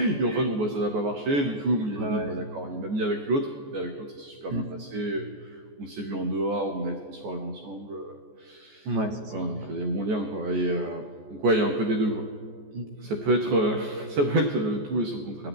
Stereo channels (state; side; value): late; left; 14 ms